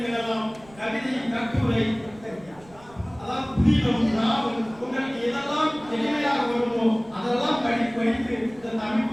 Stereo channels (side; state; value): right; noise; rumble, 24 dB below the sound